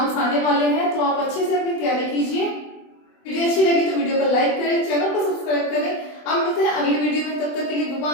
आने वाले हैं, तो आप अच्छे से अपनी तैयारी कीजिए। वीडियो अच्छी लगी तो वीडियो को लाइक करें, चैनल को सब्सक्राइब करें। अब मिलते हैं अगली वीडियो में, तब तक के लिए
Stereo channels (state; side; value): late; right; 24 ms